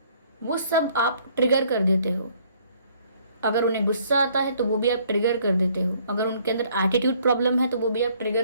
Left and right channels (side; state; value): both; inverted; correlation -0.62